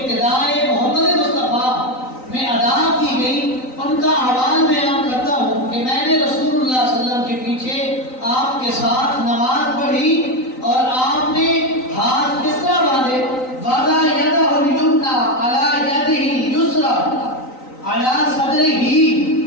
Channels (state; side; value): late; right; 3.9 ms